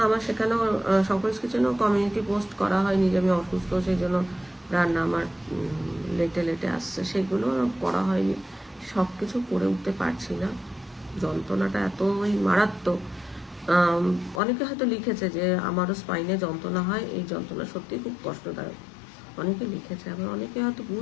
আমার সেখানেও শঙ্করস কিচেনেও কমিউনিটি পোস্ট করা হয়নি যে আমি অসুস্থ, সেই জন্য রান্না আমার লেটে লেটে আসছে, সেগুলো করা হয়নি। সব কিছু করে উঠতে পারছি না, যন্ত্রণাটা এতই মারাত্মক। অনেকে হয়তো লিখেছে যে আমারও স্পাইনে যন্ত্রণা হয়, এই যন্ত্রণা সত্যিই খুব কষ্টদায়ক, অনেকে লিখেছে। আবার অনেকে হয়তো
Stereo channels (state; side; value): drops out; right; at 14.4 s